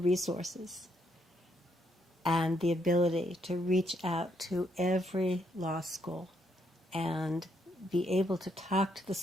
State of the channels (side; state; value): both; normal; correlation 0.75